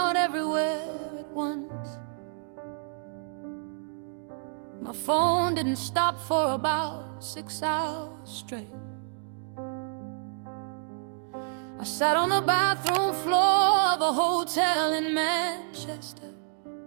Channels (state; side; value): silent; left; digital silence